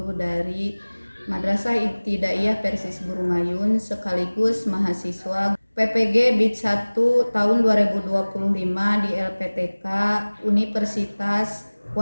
dari Madrasah Ibtidaiyah Persis Burungayun sekaligus mahasiswa PPG BID 1 tahun 2025 di LPTK Universitas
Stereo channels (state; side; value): inverted; both; correlation -1.00